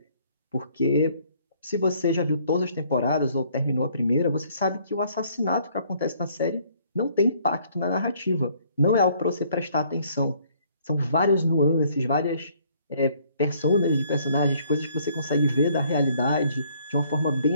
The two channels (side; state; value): both; inverted; correlation -0.63